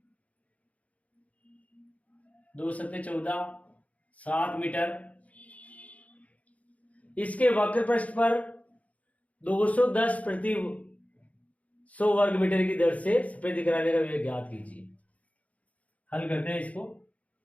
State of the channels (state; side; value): late; right; 0.068 ms